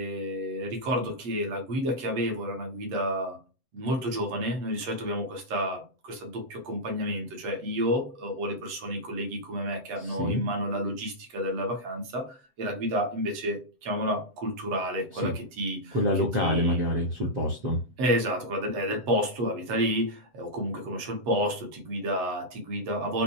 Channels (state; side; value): late; left; 7.8 ms